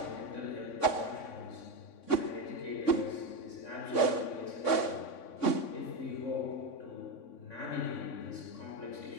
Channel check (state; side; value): late; right; 3.6 ms